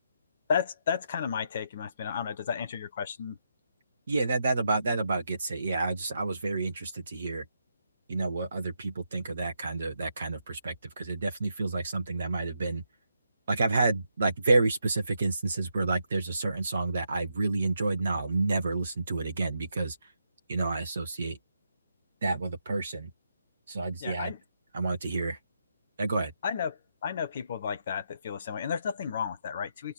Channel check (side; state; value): both; inverted; correlation -0.81